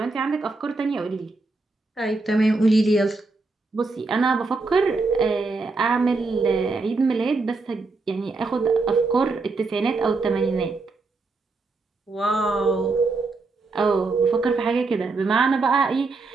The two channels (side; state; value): left; quieter; 3.7 dB